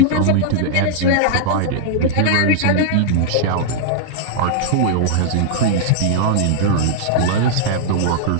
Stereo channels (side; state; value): both; different; correlation -0.01